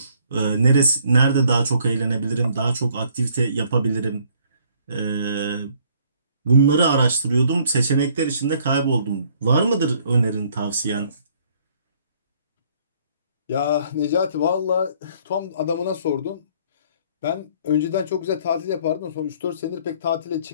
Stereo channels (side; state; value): both; inverted; correlation -0.62